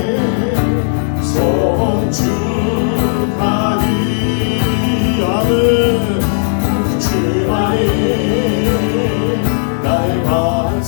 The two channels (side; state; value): right; silent; digital silence